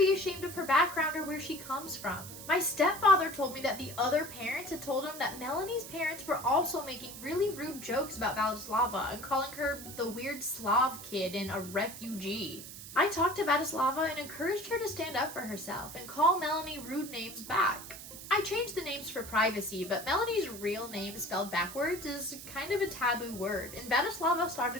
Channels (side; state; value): right; noise; hiss, 12 dB below the sound